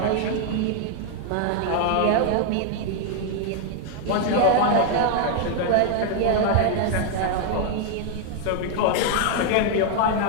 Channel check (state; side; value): different; both; correlation 0.00